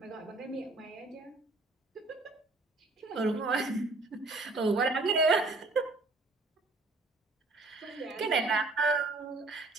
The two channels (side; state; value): left; quieter; 3.2 dB